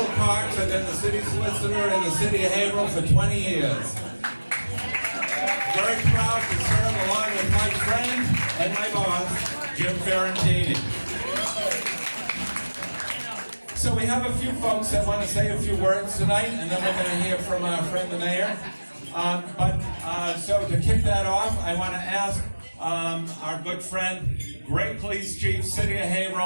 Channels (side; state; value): both; inverted; correlation -1.00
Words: Parks. I've been the city solicitor in the city of Haverhill for 20 years. Very proud to serve along with my friend and my boss, Jim Fiorentini. So we have a few folks that want to say a few words tonight, and then we're going to hear from our friend the mayor. So to kick that off, I want to ask our good friend, great police chief, city of